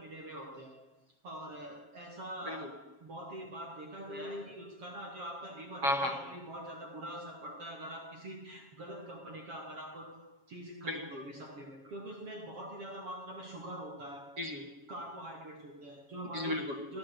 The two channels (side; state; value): left; late; 7.3 ms